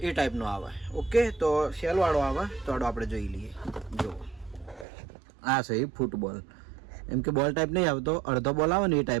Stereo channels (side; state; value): left; drops out; at 4.9 s